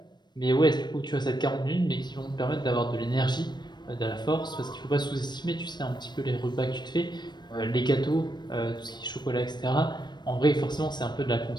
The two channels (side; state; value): right; late; 0.21 ms